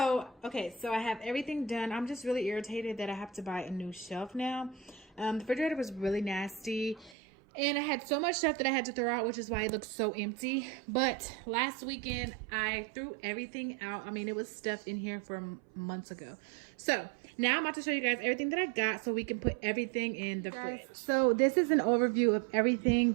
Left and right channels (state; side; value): drops out; left; at 7.2 s